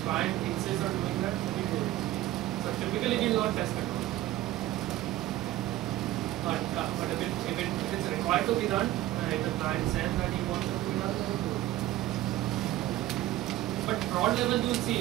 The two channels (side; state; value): left; quieter; 15.2 dB